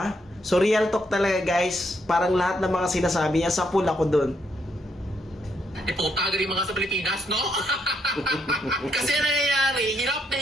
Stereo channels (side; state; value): both; normal; correlation 0.76